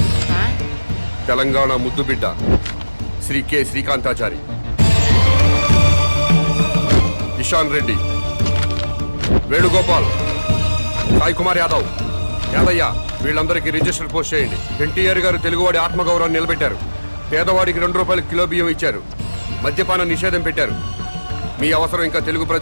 తెలంగాణ ముద్దుబిడ్డ శ్రీ కె శ్రీకాంతాచారి, ఇషాన్ రెడ్డి, వేణుగోపాల్, సాయి కుమార్ యాదవ్, యాదయ్య, వీళ్ళందరికీ రిజిస్టర్ పోస్ట్ చేయండి. ఎన్టీఆర్ గారు తెలుగువాడి ఆత్మగౌరవాన్ని నిలబెట్టారు. పేదవాడికి 2 రూపాయలు కిలో బియ్యం ఇచ్చారు. మద్యపాన నిషేధం పెట్టారు. మీ అవసరం ఇంకా తెలుగు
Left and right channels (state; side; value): inverted; both; correlation -1.00